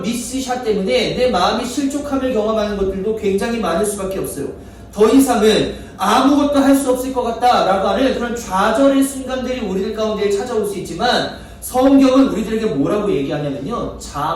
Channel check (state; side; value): identical; both; correlation 1.00